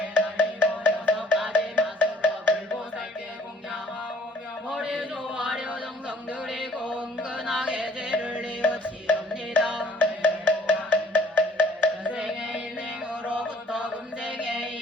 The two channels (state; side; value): normal; both; correlation 0.56